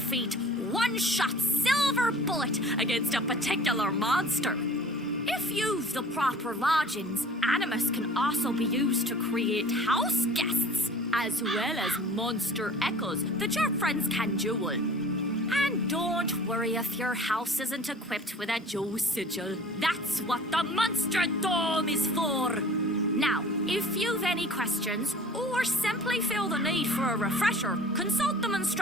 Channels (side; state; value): both; normal; correlation 0.46